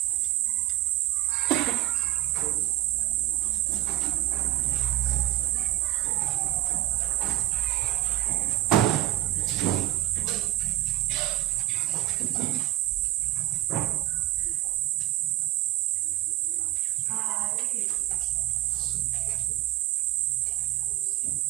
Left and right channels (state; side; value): quieter; left; 14.7 dB